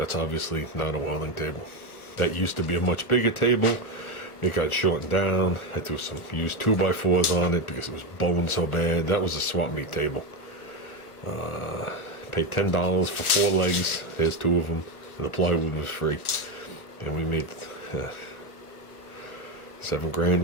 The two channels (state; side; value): late; right; 1.3 ms